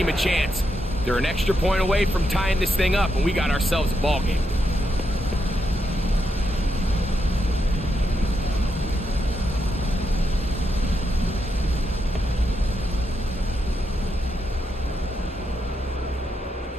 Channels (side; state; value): both; normal; correlation 0.82